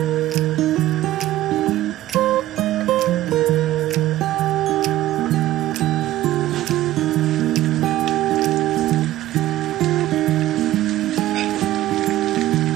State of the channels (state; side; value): quieter; left; 15.1 dB